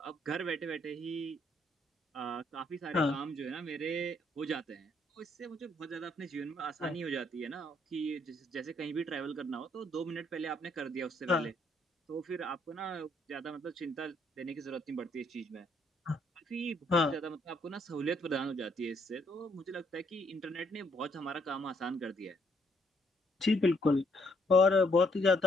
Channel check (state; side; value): normal; both; correlation 0.69